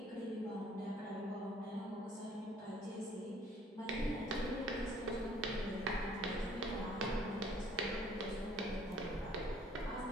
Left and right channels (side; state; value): both; normal; correlation 0.59